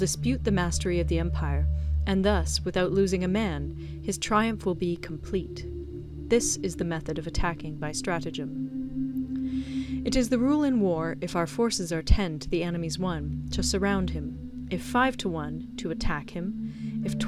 the mastery of the empire, and thus, without losing a man, his triumph will be complete. This is the method of attacking by stratagem. It is the rule in war, if our forces are 10 to the enemy's 1, to surround him; if 5 to 1, to attack him; if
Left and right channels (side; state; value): both; identical; correlation 1.00